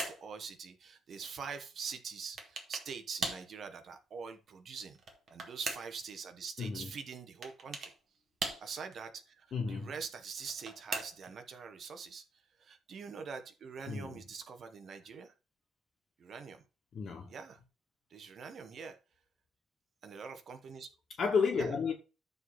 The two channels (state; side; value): normal; both; correlation 0.74